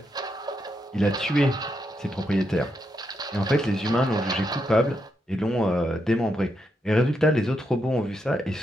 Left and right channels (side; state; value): both; normal; correlation 0.82